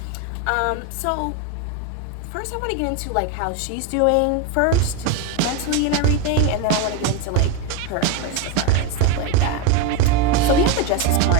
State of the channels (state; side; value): different; both; correlation 0.03